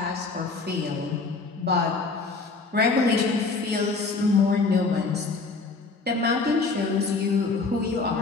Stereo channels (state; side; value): quieter; right; 4.0 dB